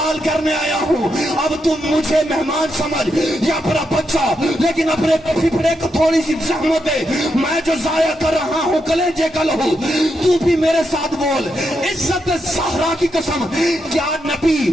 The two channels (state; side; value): normal; both; correlation 0.83